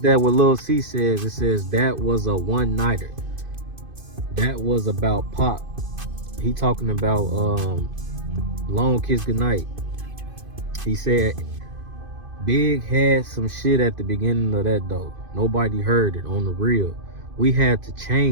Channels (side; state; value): left; late; 2.5 ms